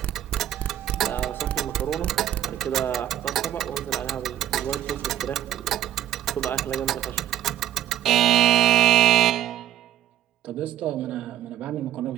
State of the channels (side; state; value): left; quieter; 11.9 dB